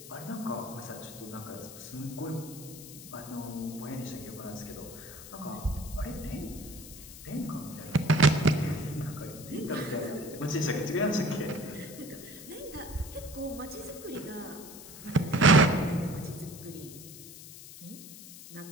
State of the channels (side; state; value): left; noise; hiss, 14 dB below the sound